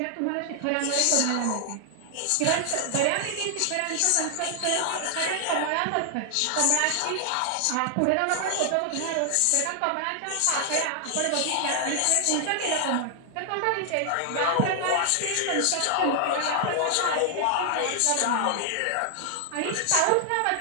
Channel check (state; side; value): different; both; correlation 0.00